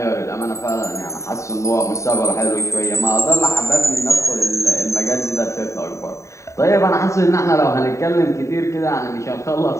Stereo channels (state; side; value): late; right; 0.14 ms